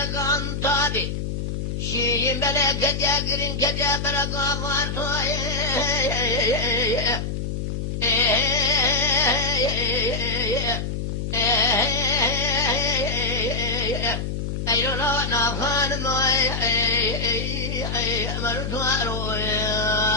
عن طابي شي بلا كجاقرين كجبرك عفارتو أيلو لا نافان ما مرتوارو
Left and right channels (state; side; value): noise; left; hum, 3 dB below the sound